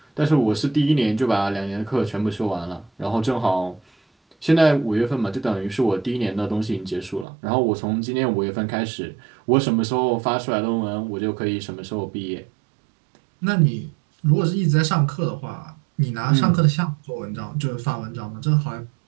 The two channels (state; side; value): drops out; left; at 7.2 s